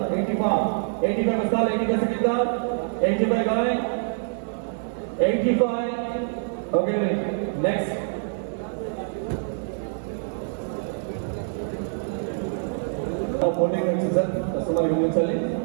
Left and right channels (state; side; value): silent; left; 61 dB below the other